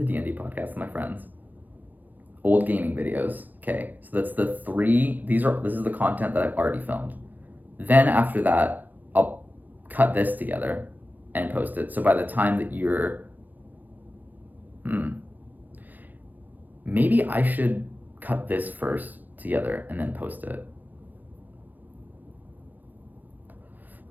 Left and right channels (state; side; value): late; left; 0.084 ms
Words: D&D podcast with my friends, old gaming videos. Okay, so that's the 3. This is the content that I've already filmed. Then after that, I'll cut this together and post it. So by the time that maybe I should cut this first together and then post it.